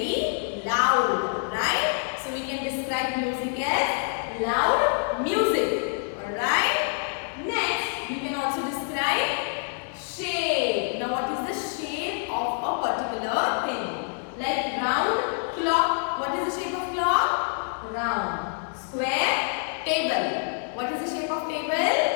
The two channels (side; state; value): right; silent; 56 dB below the other